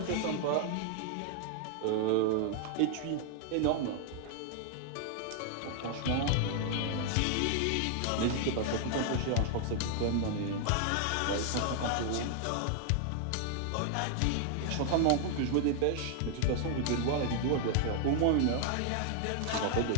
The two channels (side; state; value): both; different; correlation 0.00